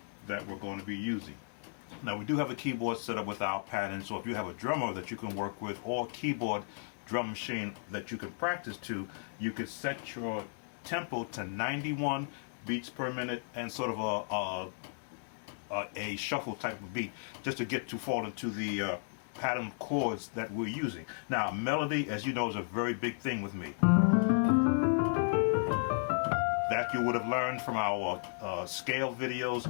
that we're going to be using. Now, we do have a keyboard set up with our pattern, so if you have a drummer that you can work with or keyboard drum machine that you can practice to, you could set your tempo to 91 beats per minute and sort of a shuffle type of beat, just to get to fall into the pattern chords that we're using. Now, melody, as you know, is a very big thing with me. That you would have learned from our scale videos,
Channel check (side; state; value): right; silent; digital silence